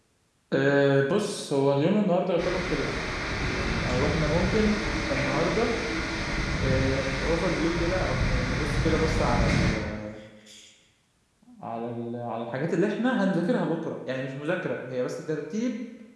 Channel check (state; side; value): identical; both; correlation 1.00